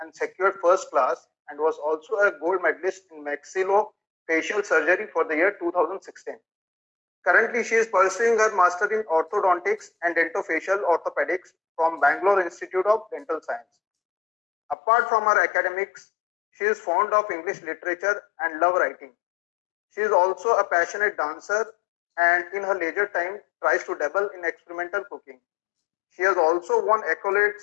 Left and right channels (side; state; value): right; drops out; at 14.8 s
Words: secured first class, and was also a gold medalist in maxillofacial surgery for the year 2016. Currently, she is pursuing her master in orthodontics and dentofacial orthopedics from Bangalore Institute of Dental Science. Apart from her academics, she is fond of English literature and love writing. She is also a passionate dancer and in her leisure time tries to dabble in experimental cooking. She has also won accolades